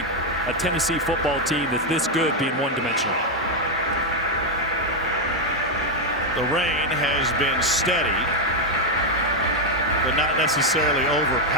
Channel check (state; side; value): normal; both; correlation 0.03